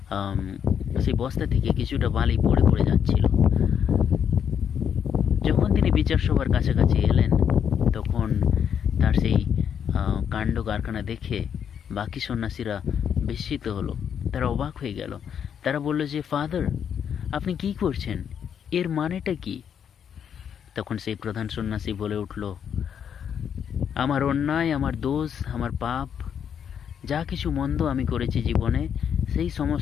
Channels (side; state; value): right; quieter; 8.2 dB